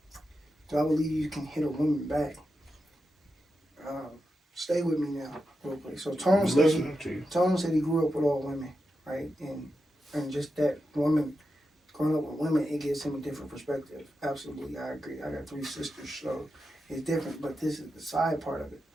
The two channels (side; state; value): both; normal; correlation 0.89